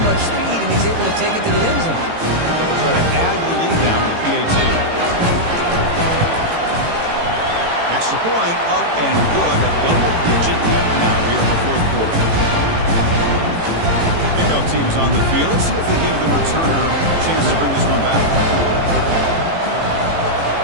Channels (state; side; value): late; left; 18 ms